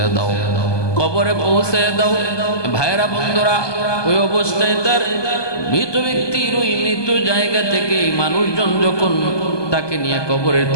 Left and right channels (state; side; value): late; right; 1.2 ms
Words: দাও, কবরে পৌঁছায় দাও। ভাইরা বন্ধুরা, ওই অবস্থায় তার মৃত ব্যক্তির ওই মৃত জায়গা থেকে মানুষজন যখন তাকে নিয়ে কবরের